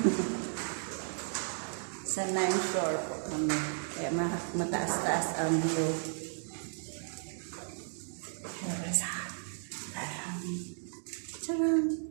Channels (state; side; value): silent; left; digital silence